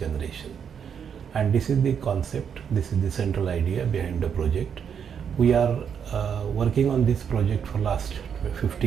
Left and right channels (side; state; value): left; quieter; 7.5 dB